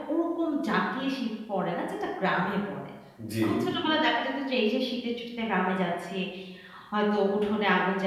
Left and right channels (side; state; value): both; identical; correlation 1.00